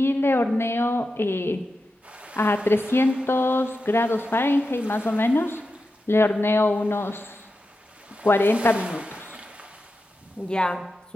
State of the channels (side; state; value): both; normal; correlation 0.90